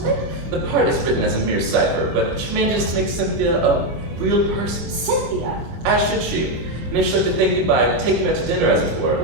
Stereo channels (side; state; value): left; late; 24 ms